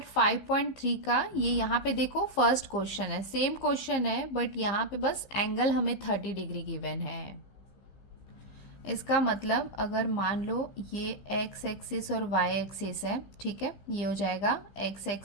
5.3 का, ये यहाँ पे देखो फर्स्ट क्वेश्चन है, सेम क्वेश्चन है बट यहाँ पे बस एंगल हमें 30 डिग्री गिवन है। इसका मतलब अगर मान लो ये एक्स एक्सिस और वाई एक्सिस है, ठीक है, ये हो जाएगा एक्स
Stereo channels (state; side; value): late; right; 15 ms